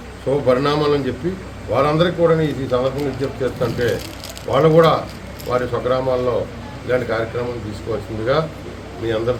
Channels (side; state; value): both; identical; correlation 1.00